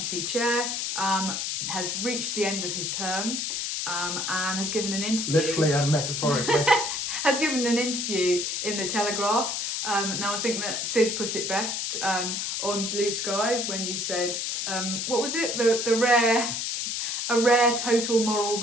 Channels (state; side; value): noise; left; hiss, 2 dB below the sound